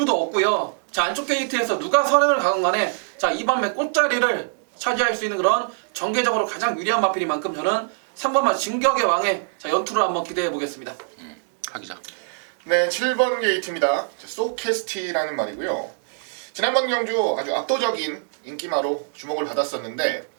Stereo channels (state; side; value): silent; left; digital silence